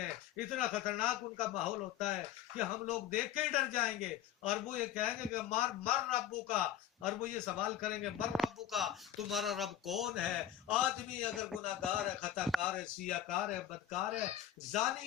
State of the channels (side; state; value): right; quieter; 10.7 dB